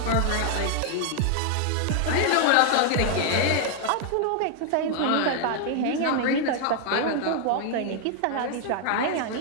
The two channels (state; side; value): different; both; correlation 0.00